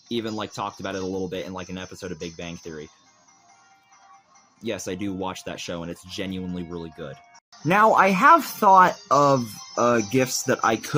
even like talked about it a little bit in like an episode of Big Bang Theory. Yes, I do watch that show, and it's genuinely really good. Now, I have thought of gifts that I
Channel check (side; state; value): both; identical; correlation 1.00